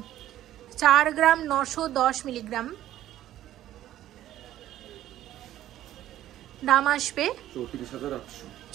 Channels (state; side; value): quieter; left; 13.1 dB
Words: 4 গ্রাম 910 মিলিগ্রাম দাম আসবে